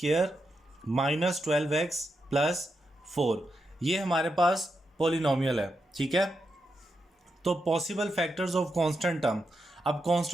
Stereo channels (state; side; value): normal; both; correlation 0.85